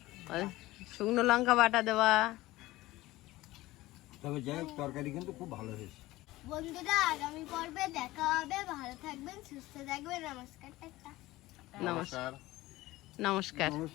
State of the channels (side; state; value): right; quieter; 18.0 dB